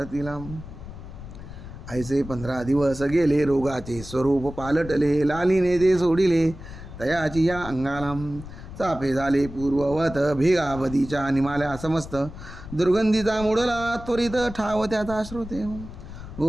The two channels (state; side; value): noise; left; rumble, 13 dB below the sound